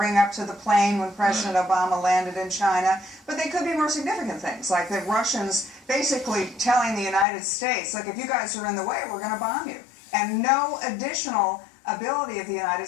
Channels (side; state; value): right; drops out; at 7.2 s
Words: up to the plane when President Obama landed in China, but they could be more significant things, like the Russians basically telling the United States, look, if you guys are in the way, we're going to bomb you. And no additional ability of the United